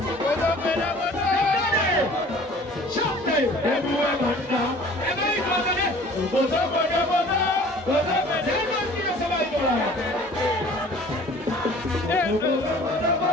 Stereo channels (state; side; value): normal; both; correlation 0.49